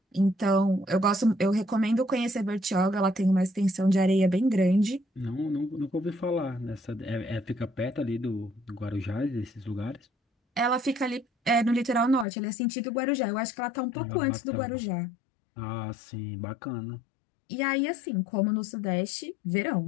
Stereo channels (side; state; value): right; drops out; at 12.2 s